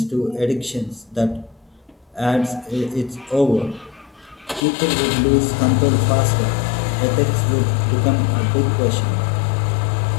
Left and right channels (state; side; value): drops out; right; at 4.6 s